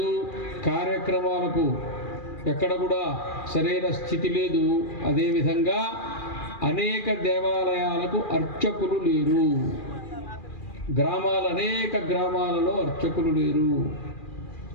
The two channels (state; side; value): late; right; 2.4 ms